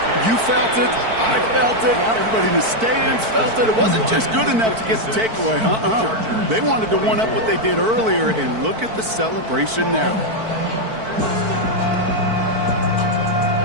You felt it. I felt it. Yep. Everybody in the stands felt it. It wasn't just good enough to get the takeaway. They wanted to one-up what they did earlier, and look at the celebration now.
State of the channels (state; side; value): late; left; 4.5 ms